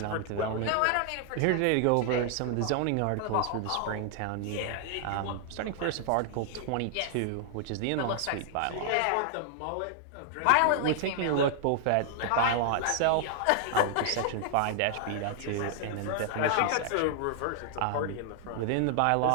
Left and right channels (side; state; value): both; different; correlation 0.00